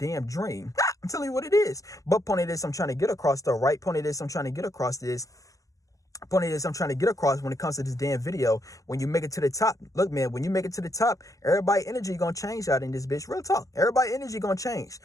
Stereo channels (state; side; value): late; right; 0.16 ms